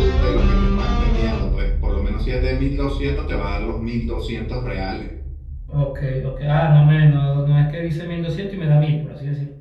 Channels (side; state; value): both; identical; correlation 1.00